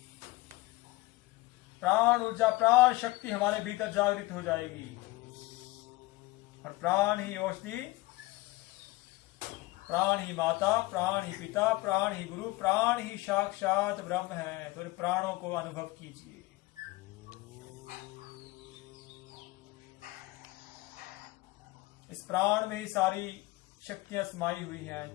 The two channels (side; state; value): right; quieter; 20.6 dB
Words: प्राण ऊर्जा, प्राण शक्ति हमारे भीतर जागृत हो जाएगी। और प्राण ही औषधि, प्राण ही माता, प्राण ही पिता, प्राण ही गुरु, प्राण ही साक्षात ब्रह्म है। तो प्राणों को अनुभव कीजिए। इस प्राण में ही सारी शक्तियां समाई हुई हैं।